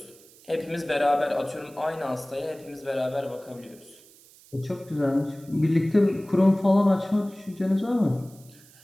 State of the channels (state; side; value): noise; right; hiss, 25 dB below the sound